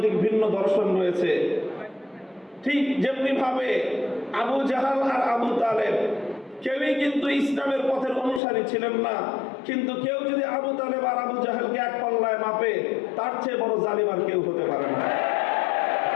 ভিন্ন দর্শন রয়েছে। ঠিক যেমনি ভাবে আবু জাহাল আর আবু তালেব কেউই কিন্তু ইসলামের পথের অনুসারী ছিলেন না, কিন্তু কেউ যদি আবু তালেব আর আবু জাহেলকে এক পাল্লায় মাপে, তার চেয়ে বড় জালিম আর কেউ হতে পারে না।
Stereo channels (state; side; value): drops out; right; at 8.4 s